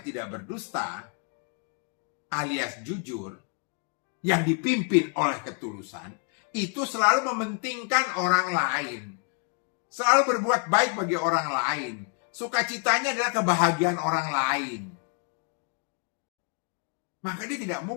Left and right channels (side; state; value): right; quieter; 38.2 dB